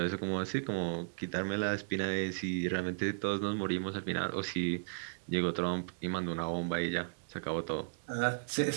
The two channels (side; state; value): left; silent; digital silence